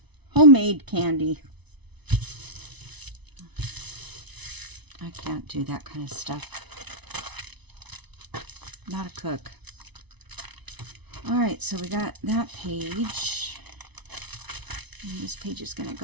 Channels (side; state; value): left; late; 0.99 ms